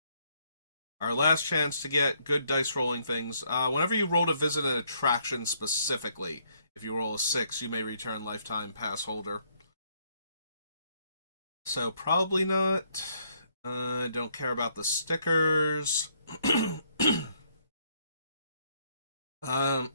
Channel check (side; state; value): both; inverted; correlation -0.70